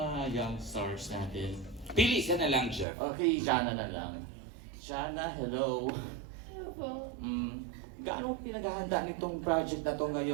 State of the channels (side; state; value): left; drops out; at 2.9 s